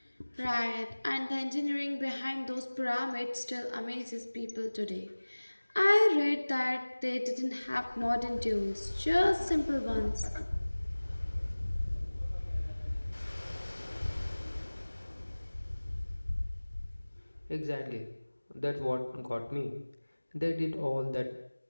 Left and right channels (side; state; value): both; inverted; correlation -1.00